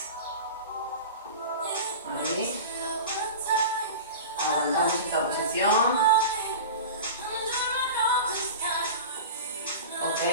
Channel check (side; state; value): both; inverted; correlation -0.32